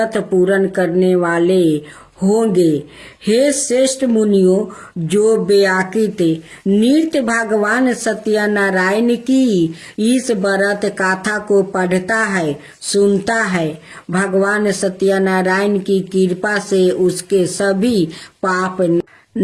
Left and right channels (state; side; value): identical; both; correlation 1.00